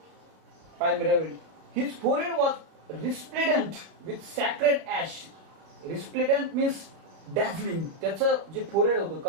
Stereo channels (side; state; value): left; late; 32 ms